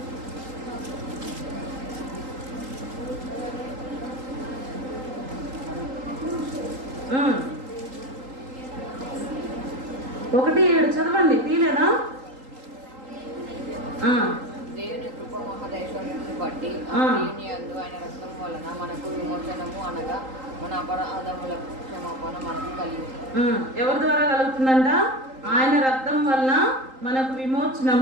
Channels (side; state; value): left; late; 3.8 ms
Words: 1:7 చదవండి. తీలేదా? దేవుని కృప మహదైశ్వర్యమును బట్టి యందు ఆయన రక్తం వలన మనకు విమోచనము, అనగా మన అపరాధములకు క్షమాపణ మనకు కలిగింది. ఎవరి ద్వారా కలుగుతుందంట? ఆయన రక్తం వలన మనకు